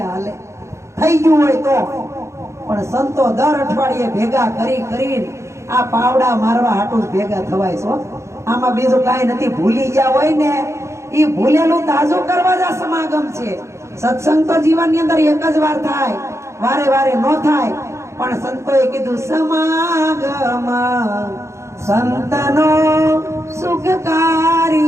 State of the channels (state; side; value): late; left; 0.14 ms